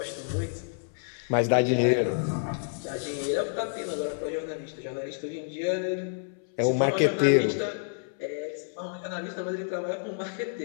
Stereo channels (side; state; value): right; silent; 59 dB below the other